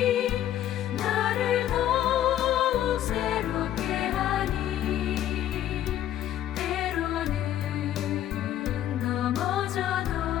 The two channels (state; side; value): quieter; right; 11.9 dB